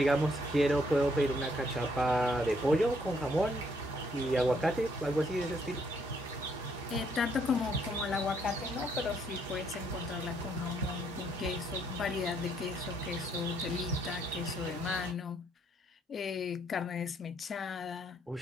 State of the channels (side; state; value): both; normal; correlation 0.70